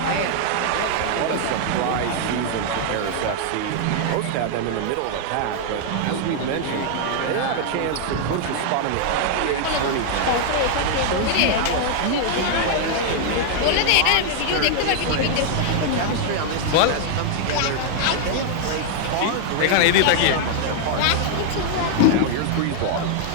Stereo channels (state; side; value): different; both; correlation 0.00